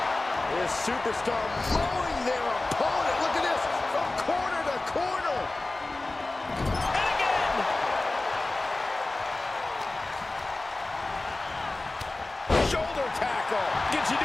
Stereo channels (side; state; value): right; quieter; 3.0 dB